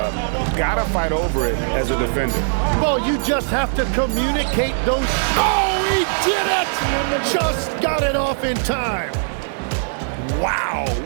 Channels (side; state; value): left; silent; digital silence